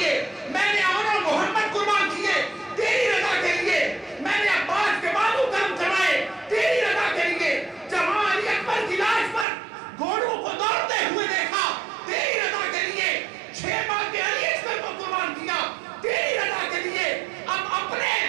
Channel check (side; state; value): left; drops out; at 9.5 s